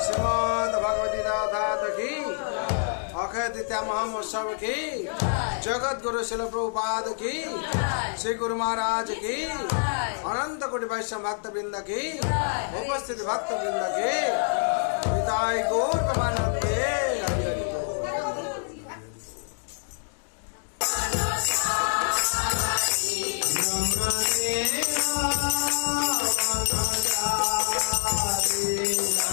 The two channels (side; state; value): right; silent; digital silence